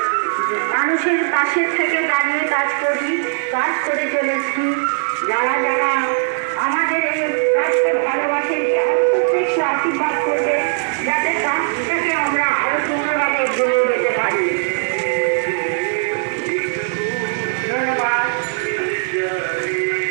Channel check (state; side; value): silent; left; digital silence